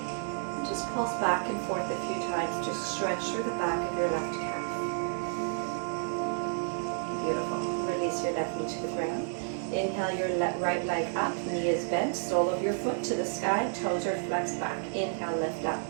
And just pulse back and forth a few times to stretch through the back of your left calf. Beautiful. Release your left knee to the ground. Inhale your right leg up, knee is bent, sole of your foot to the sky, toes are flexed back. Inhale, lift up.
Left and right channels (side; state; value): left; silent; digital silence